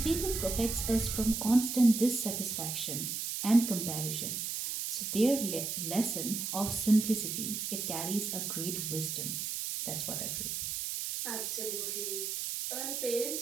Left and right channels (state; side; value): noise; right; hiss, 3 dB below the sound